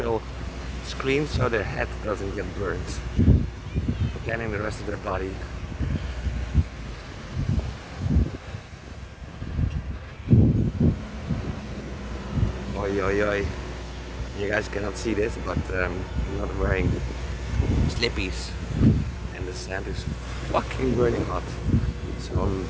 screen so their head doesn't get burned. Scanning the rest of their body. Oi, oi, oi. You guys cannot see this, but I'm not wearing slippies. And the sand is fucking burning hot. So I'm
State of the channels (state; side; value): identical; both; correlation 1.00